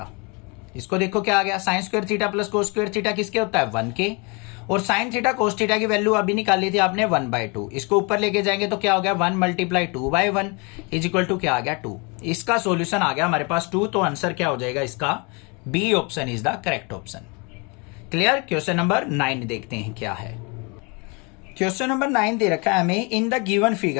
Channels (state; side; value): quieter; right; 30.9 dB